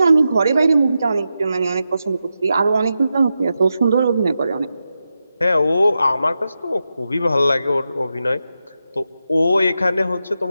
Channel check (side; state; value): both; inverted; correlation -0.89